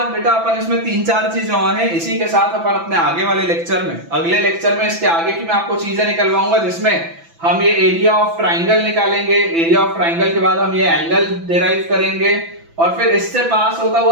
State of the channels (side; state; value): left; late; 6.0 ms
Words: बेटा अपन इसमें 3-4 चीजें और हैं, इसी के साथ अपन अपने आगे वाले लेक्चर में, अगले लेक्चर में इसके आगे की मैं आपको चीजें निकलवाऊंगा, जिसमें हम ये एरिया ऑफ ट्राइंगल निकालेंगे, एरिया ऑफ ट्राइंगल के बाद हम ये एंगल डिराइव करेंगे, और फिर इससे पास होता